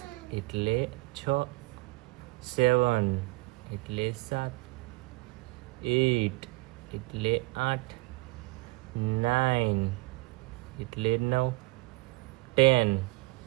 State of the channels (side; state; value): left; quieter; 22.7 dB